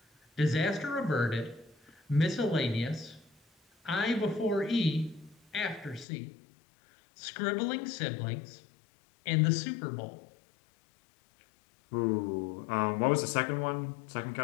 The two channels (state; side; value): drops out; right; at 6.1 s